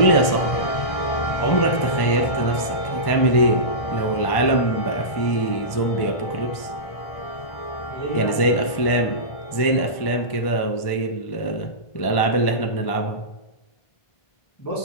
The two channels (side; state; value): right; late; 1.1 ms